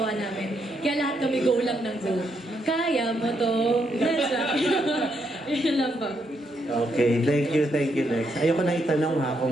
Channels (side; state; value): both; normal; correlation 0.78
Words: namin. Kaya lahat kami go lang ng go. Kaya mo to. Yun lang pa. Okay, thank you, Lex. Ayoko na itanong ha